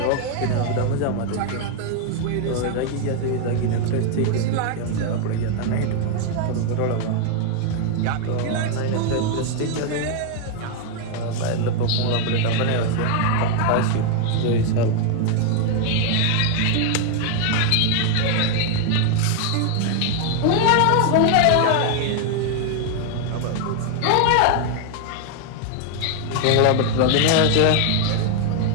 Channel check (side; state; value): both; different; correlation 0.00